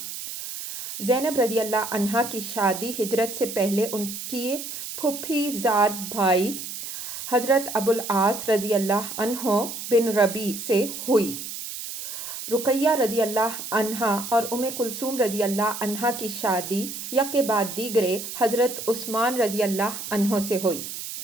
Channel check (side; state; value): right; noise; hiss, 8 dB below the sound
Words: زینب رضی اللہ عنہا کی شادی ہجرت سے پہلے ان کی پھوپھی زاد بھائی حضرت ابوالعاص رضی اللہ عنہ بن ربیع سے ہوئی۔ رقیہ رضی اللہ عنہا اور ام کلثوم رضی اللہ عنہا کی شادی یکے بعد دیگرے حضرت عثمان رضی اللہ عنہ سے ہوئی۔